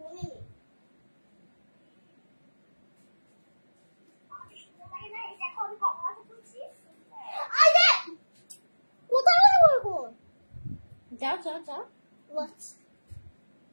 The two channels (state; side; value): inverted; both; correlation -1.00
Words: যাও যাও যাও।